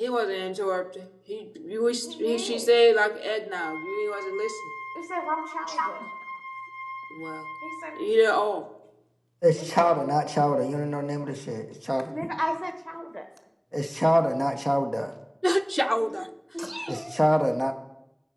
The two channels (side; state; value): both; identical; correlation 1.00